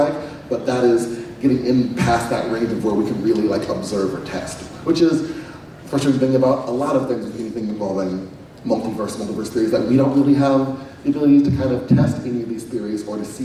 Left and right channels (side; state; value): both; identical; correlation 1.00